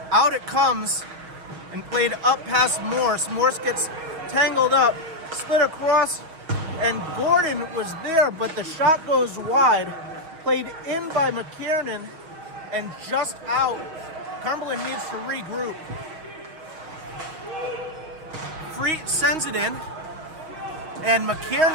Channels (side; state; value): left; late; 6.3 ms